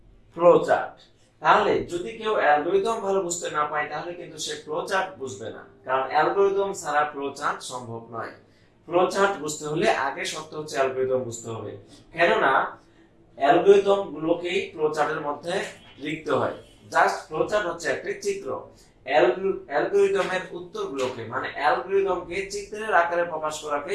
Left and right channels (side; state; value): both; identical; correlation 1.00